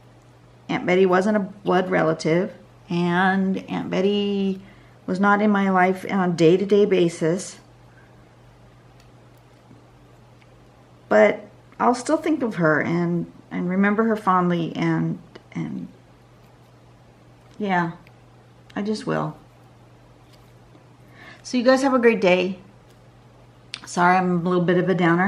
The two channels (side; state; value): both; identical; correlation 1.00